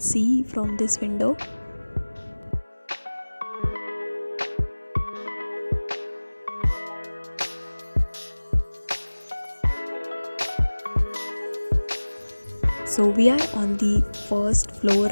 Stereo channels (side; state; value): both; inverted; correlation -1.00